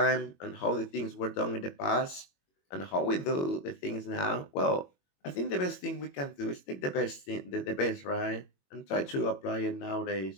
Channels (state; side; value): late; right; 21 ms